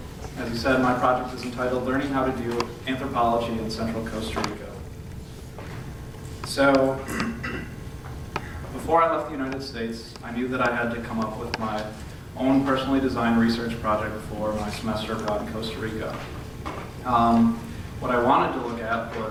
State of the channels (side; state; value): both; identical; correlation 1.00